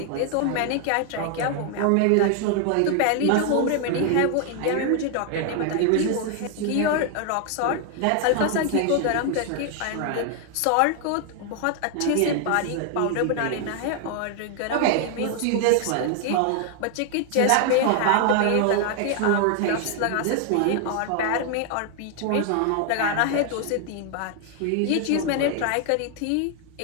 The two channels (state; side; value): different; both; correlation 0.00